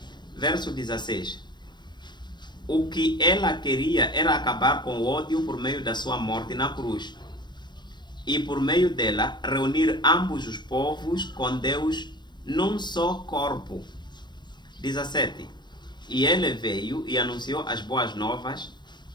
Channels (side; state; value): right; late; 0.22 ms